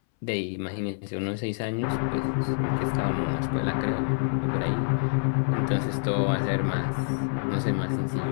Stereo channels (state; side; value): silent; right; 60 dB below the other